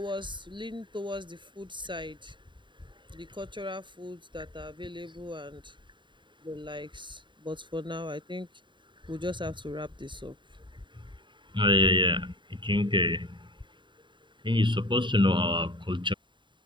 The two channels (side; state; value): left; late; 0.23 ms